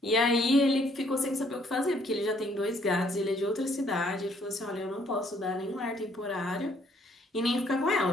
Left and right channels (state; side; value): normal; both; correlation 0.65